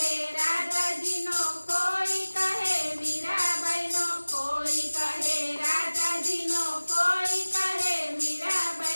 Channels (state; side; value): inverted; both; correlation -1.00